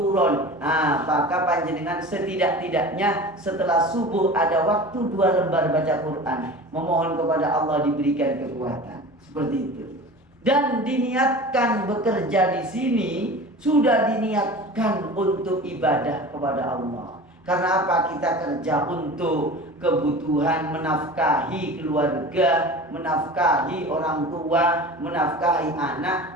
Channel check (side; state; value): both; normal; correlation 0.36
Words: Nah, maka panjenengan setidak-tidaknya setelah subuh ada waktu 2 lembar baca Quran. Memohon kepada Allah diberikan kekuatan. Seperti itu. Dan diniatkan bekerja di sini sudah diniatkan untuk ibadah kepada Allah. Karena apa? Kita kerja untuk kebutuhan menafkahi keluarga, menafkahi orang tua, menafkahi